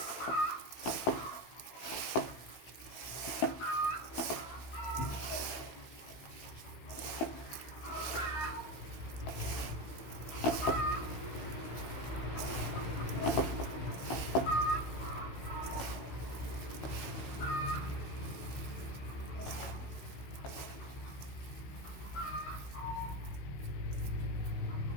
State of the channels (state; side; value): late; right; 16 ms